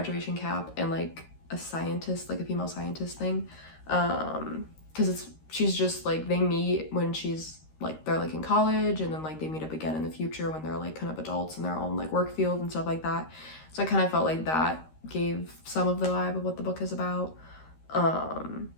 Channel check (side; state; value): right; late; 13 ms